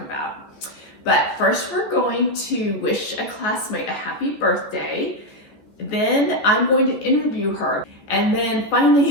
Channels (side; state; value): right; late; 14 ms